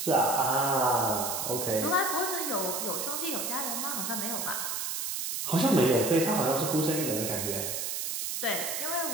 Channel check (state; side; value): noise; right; hiss, 2 dB below the sound